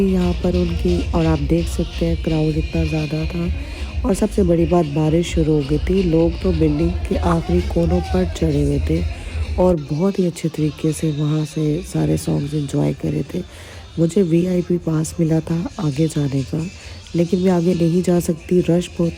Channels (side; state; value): both; identical; correlation 1.00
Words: यहाँ पर उनकी, और आप देख सकते हैं क्राउड इतना ज़्यादा था। और सबसे बड़ी बात, बारिश शुरू हो गई थी। लोग तो बिल्डिंग के आखिरी कोनों पर चढ़े हुए थे और बहुत ही अच्छे तरीके से वहाँ से सारे सॉन्ग्स एंजॉय करे थे। मुझे VIP पास मिला था आगे जाने का, लेकिन मैं आगे नहीं जा सकती, रश बहुत